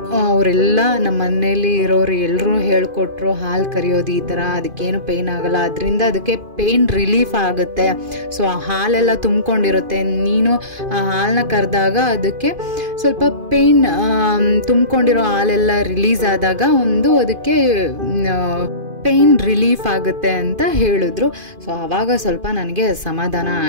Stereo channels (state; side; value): late; left; 2.5 ms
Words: ಅವರೆಲ್ಲ ನಮ್ಮ ಮನೇಲಿ ಇರೋರು ಎಲ್ಲರೂ ಹೇಳ್ಕೊಟ್ರು, ಹಾಲು ಕರಿಯೋದು ಈ ಥರ, ಅದಕ್ಕೇನು ಪೇಯ್ನ್ ಆಗೋಲ್ಲ, ಅದರಿಂದ ಅದಕ್ಕೆ ಪೇಯ್ನ್ ರಿಲೀಫ್ ಆಗುತ್ತೆ. ಸೊ ಆ ಹಾಲೆಲ್ಲ ತುಂಬ್ಕೊಂಡಿರುತ್ತೆ. ನೀನು ಆ ಹಾಲನ್ನ ಕರೆದಾಗ ಅದಕ್ಕೆ ಸ್ವಲ್ಪ ಪೇಯ್ನ್, ತುಂಬ್ಕೊಂಡಿರೋ ಹಾಲೆಲ್ಲ ರಿಲೀಸ್ ಆದಾಗ ಅದಕ್ಕೆ ಪೇಯ್ನ್ ರಿಲೀಫ್ ಆಗುತ್ತೆ ಅಂತ ಹೇಳಿದ್ರು. ಸೊ ಆವಾಗ ಸ್ವಲ್ಪ ನನಗೆ ಸಮಾಧಾನ